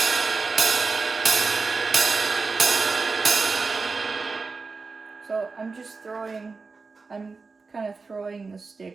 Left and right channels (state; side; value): quieter; left; 4.3 dB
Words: So I'm kind of throwing the